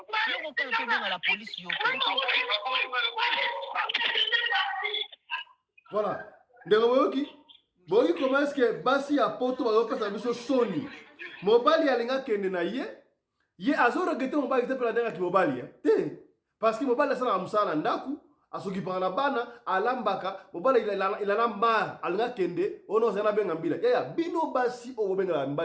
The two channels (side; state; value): both; identical; correlation 1.00